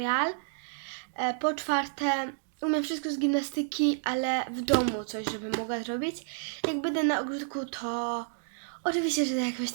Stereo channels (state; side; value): silent; left; digital silence